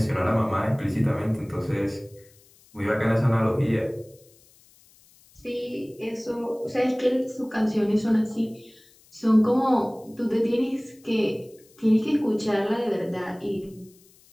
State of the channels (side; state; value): left; noise; hiss, 29 dB below the sound